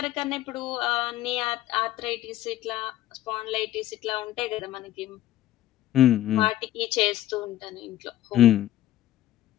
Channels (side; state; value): right; quieter; 13.6 dB